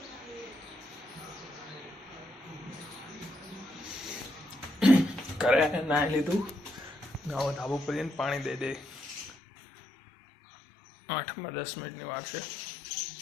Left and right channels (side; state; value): right; drops out; at 9.3 s